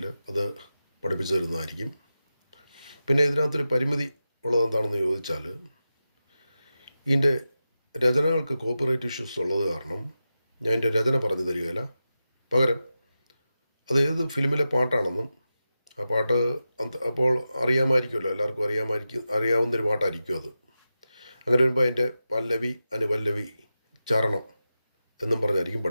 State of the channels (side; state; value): both; inverted; correlation -0.92